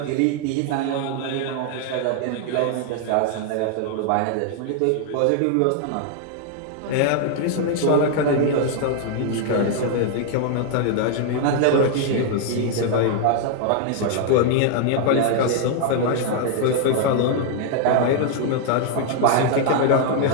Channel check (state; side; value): different; both; correlation 0.00